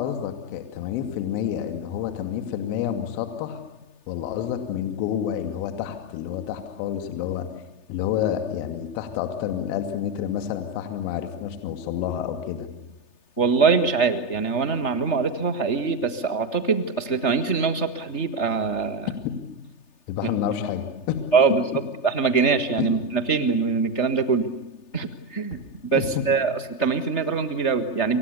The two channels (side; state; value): right; late; 3.3 ms